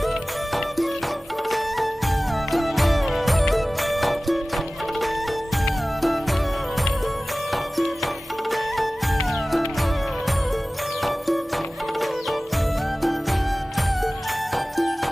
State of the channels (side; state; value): both; normal; correlation 0.97